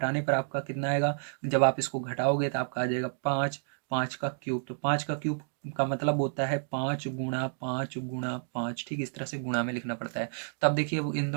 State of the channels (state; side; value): silent; left; digital silence